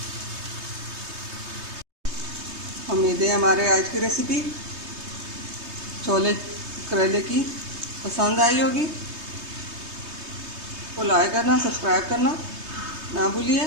उम्मीद है हमारे आज की रेसिपी छोले करेले की पसंद आई होगी। तो लाइक करना, सब्सक्राइब करना ना भूलिए।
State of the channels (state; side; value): late; left; 3.2 ms